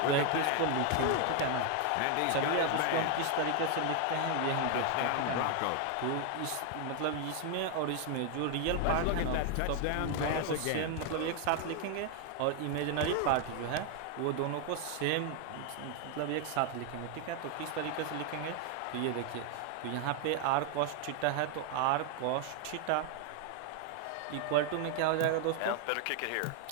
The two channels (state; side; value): different; both; correlation 0.00